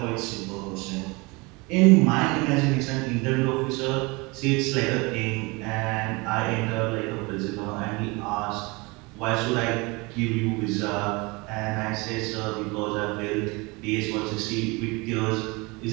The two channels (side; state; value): left; quieter; 26.2 dB